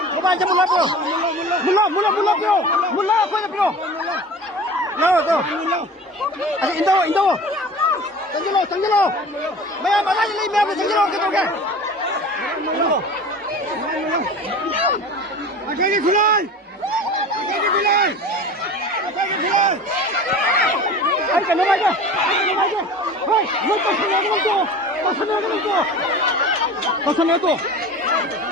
lớp quay lớp rồi. Nào rồi. Indo. Tanggi lo. Mày mà lại lấy mẹ của tanggi lo cái đâu kìa. Akhirnya khulai. Ay, que no vaya. Ay, no pasa nada.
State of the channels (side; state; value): both; normal; correlation 0.37